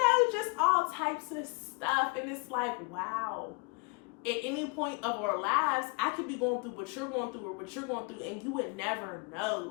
just all types of stuff. And it's like, wow. At any point of our lives, I could be going through what you're going through or what you're going through, and you would never know.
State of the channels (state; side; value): quieter; right; 31.5 dB